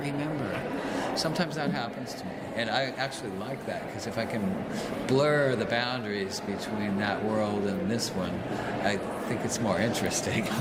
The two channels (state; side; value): identical; both; correlation 1.00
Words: Sometimes that happens to me, and I actually like that, because if I can blur the boundaries between that world and this one, I think it's more interesting.